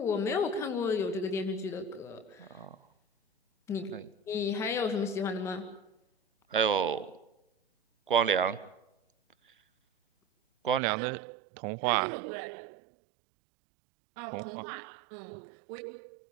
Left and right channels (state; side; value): drops out; left; at 10.8 s